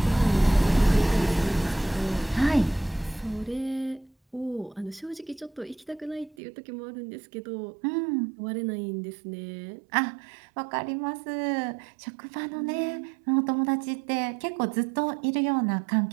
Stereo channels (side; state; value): left; drops out; at 6.4 s